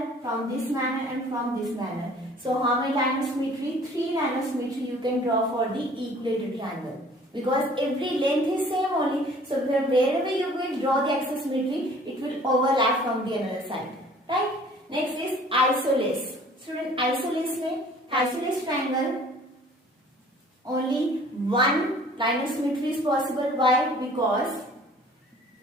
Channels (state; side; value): normal; both; correlation 0.52